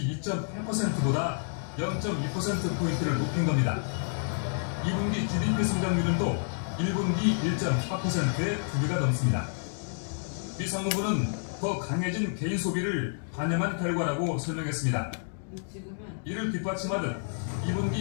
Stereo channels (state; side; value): silent; right; digital silence